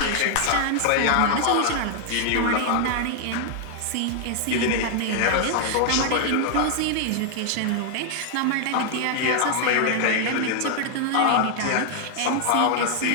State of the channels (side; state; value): both; different; correlation 0.00